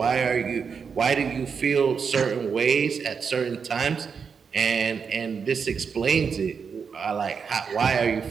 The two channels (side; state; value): left; quieter; 6.1 dB